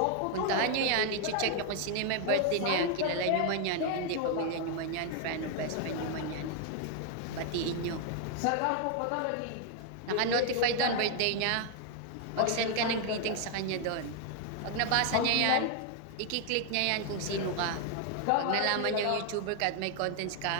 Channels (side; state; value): both; different; correlation 0.00